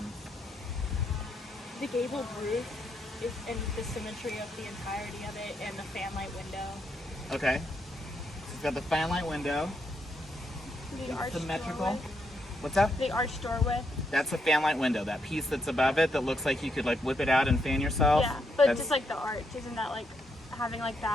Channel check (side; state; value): both; normal; correlation 0.79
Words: The gabled roof is and the symmetry of the entirety of it and the fanlight window. Okay. So it's got the fanlight window. The arched Symmetrical. doorway. What's that? The arched doorway. That's a fanlight window. That piece that's above it that looks like you could like whip it out and fan yourself. Yeah, but That's- just like the arch, isn't that like having like